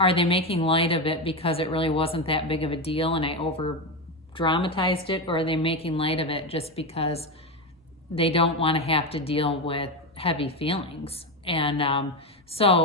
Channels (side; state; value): both; normal; correlation 0.14